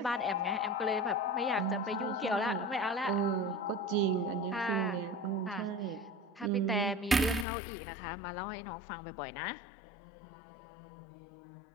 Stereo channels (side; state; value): right; drops out; at 7.5 s